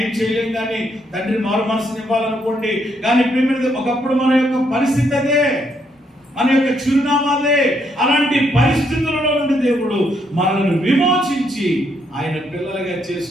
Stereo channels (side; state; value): both; normal; correlation 0.74